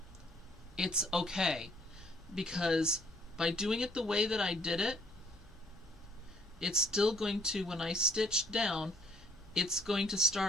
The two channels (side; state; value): right; noise; rumble, 24 dB below the sound